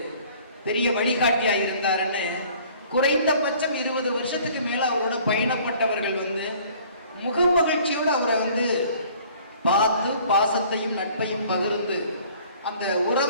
பெரிய வழிகாட்டியா இருந்தாருன்னு குறைந்தபட்சம் 20 வருஷத்துக்கு மேல அவரோட பயணப்பட்டவர்கள் முகமகிழ்ச்சியோடு அவரை பார்த்து பாசத்தையும் நட்பையும் பகிர்ந்து அந்த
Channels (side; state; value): both; inverted; correlation -0.53